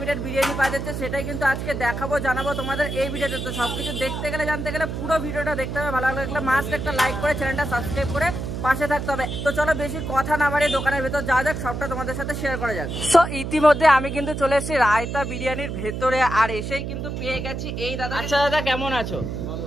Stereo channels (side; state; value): right; noise; hum, 5 dB below the sound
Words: বিরিয়ানি পাওয়া যাচ্ছে সেটাই কিন্তু আজকে দেখাবো, জানাবো তোমাদের এই ভিডিওতে। তো সবকিছু দেখতে গেলে জানতে গেলে পুরো ভিডিওটা দেখতে হবে। ভালো লাগলে মাস্ট একটা লাইক করে চ্যানেলটা সাবস্ক্রাইব করে পাশে থাকতে হবে। তো চলো বেশি কথা না বাড়িয়ে দোকানের ভেতর যাওয়া যাক, সবটা তোমাদের সাথে শেয়ার করা যাক। সো ইতিমধ্যে আমি কিন্তু চলে এসেছি রায়তা বিরিয়ানির ভেতরে, আর এসেই কিন্তু পেয়ে গেছি এই দাদা। আচ্ছা দাদা, কেমন আছো?